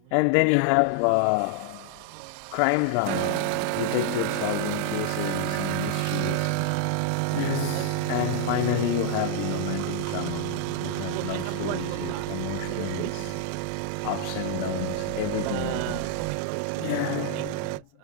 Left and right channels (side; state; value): both; different; correlation -0.01